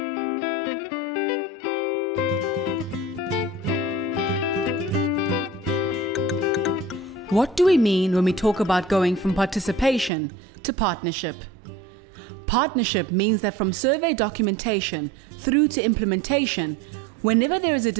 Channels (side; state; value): left; drops out; at 10.1 s